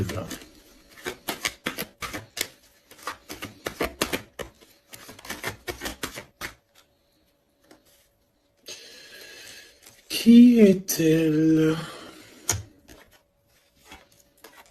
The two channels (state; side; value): identical; both; correlation 1.00